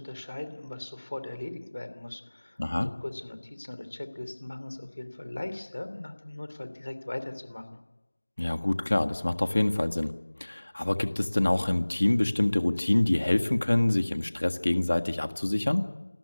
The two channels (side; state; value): both; inverted; correlation -1.00